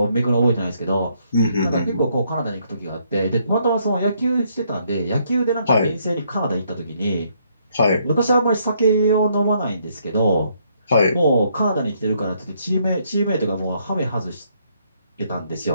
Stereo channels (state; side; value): inverted; both; correlation -0.71